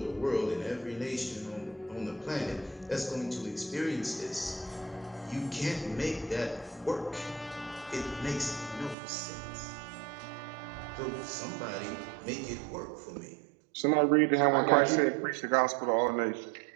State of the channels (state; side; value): drops out; left; at 9.0 s